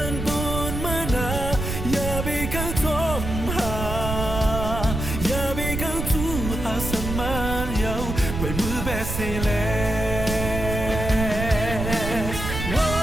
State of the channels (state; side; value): noise; right; rumble, 4 dB below the sound